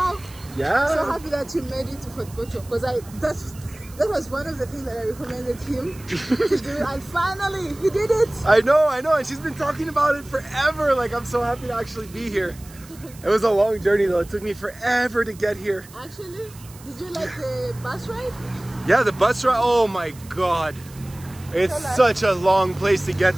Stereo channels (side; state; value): right; noise; hiss, 21 dB below the sound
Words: Yeah. So happy that you made it to Fort Poto because that was one of the things that I recommended him to do, and finally he did it. I know, and she's been talking about it forever. Like, I'm so happy to actually be here. It was a long journey though. It took me forever to get here. Actually, did you like the bus ride? Yeah, the bus ride. Oh my God, it's such a long place to get